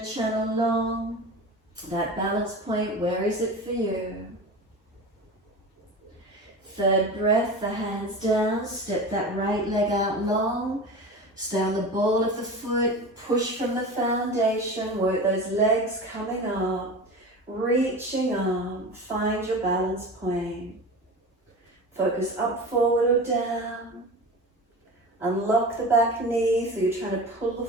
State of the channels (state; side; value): normal; both; correlation 0.31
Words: Channel long. That balance point, where is it for you? Third breath, the hands down, step that right leg out long. Stay on the ball of the foot, push from the foundation, work those legs coming up, reaching up, find your balance point. Focus up, forward or down. Unlock the back knee, so you're trying to pull the